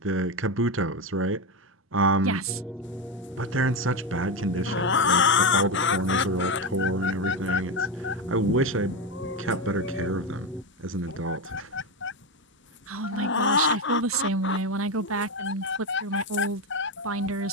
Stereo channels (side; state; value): both; normal; correlation 0.13